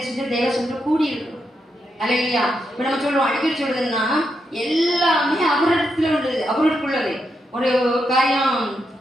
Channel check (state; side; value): normal; both; correlation 0.83